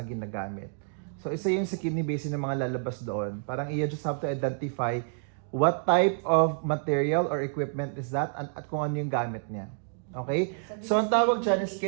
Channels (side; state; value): left; silent; digital silence